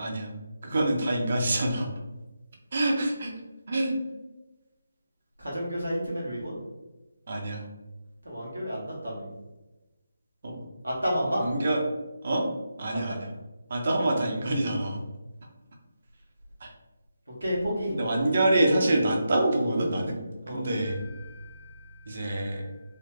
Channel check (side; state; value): both; inverted; correlation -0.86